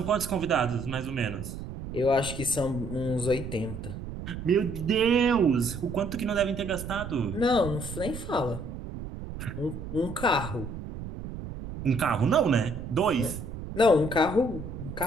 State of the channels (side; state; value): right; noise; rumble, 9 dB below the sound